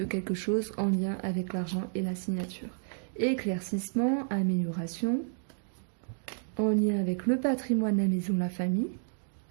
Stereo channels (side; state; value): left; silent; digital silence